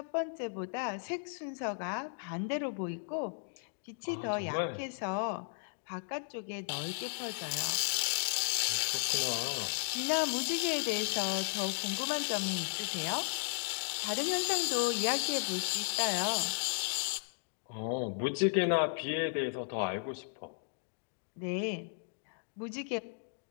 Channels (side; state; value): right; silent; digital silence